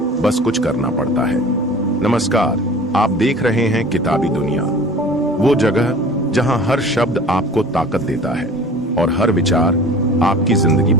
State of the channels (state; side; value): normal; both; correlation 0.43